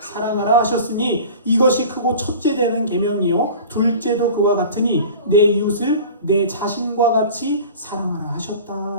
사랑하라 하셨으니 이것이 크고 첫째 되는 계명이요 둘째도 그와 같으니 내 이웃을 내 자신과 같이 사랑하라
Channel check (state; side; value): inverted; both; correlation -0.39